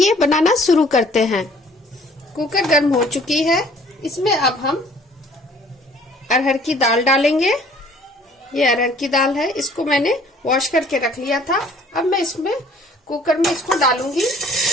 बनाना शुरू करते हैं। कुकर गर्म हो चुकी है। इसमें अब हम अरहर की दाल डालेंगे। ये अरहर की दाल है, इसको मैंने वॉश करके रख लिया था। अब मैं इसमें कुकर में इसको डालूंगी।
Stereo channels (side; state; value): both; normal; correlation 0.55